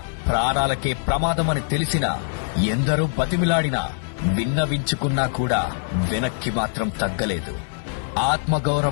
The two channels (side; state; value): right; silent; digital silence